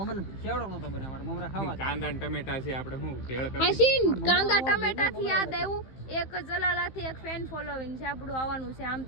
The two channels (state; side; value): late; right; 15 ms